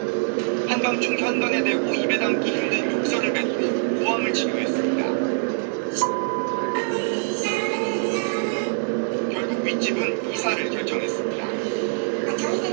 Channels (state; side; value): silent; left; digital silence